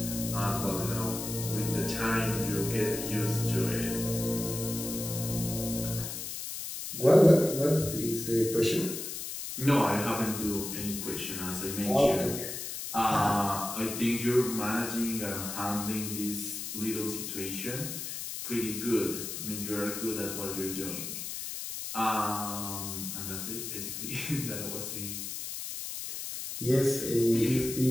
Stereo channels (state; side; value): noise; left; hiss, 6 dB below the sound